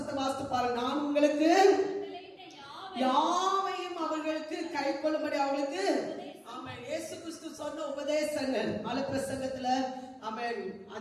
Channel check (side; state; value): both; identical; correlation 1.00